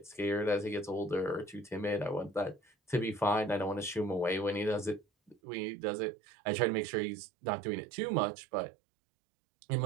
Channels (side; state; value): left; drops out; at 5.4 s